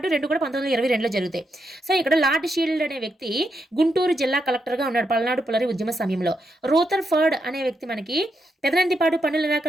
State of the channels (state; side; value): normal; both; correlation 0.82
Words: 2 కూడా 1922లో జరుగుతాయి. సో ఇక్కడ లార్డ్ షీల్డ్ అనే వ్యక్తి గుంటూరు జిల్లా కలెక్టర్గా ఉన్నాడు పల్నాడు పుల్లరి ఉద్యమ సమయంలో. రోథర్ఫర్డ్ అనే వ్యక్తి మనకి పెదనందిపాడు పన్నుల